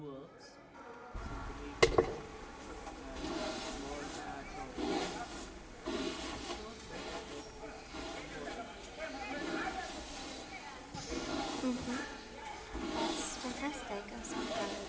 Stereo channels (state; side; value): identical; both; correlation 1.00